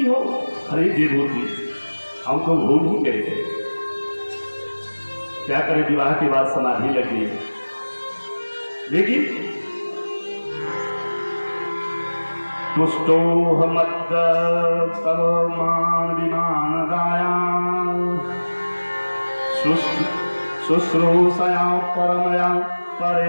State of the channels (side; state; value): both; inverted; correlation -1.00